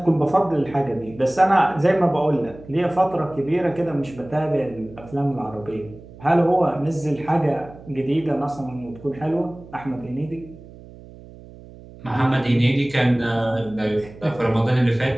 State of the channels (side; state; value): right; noise; hum, 19 dB below the sound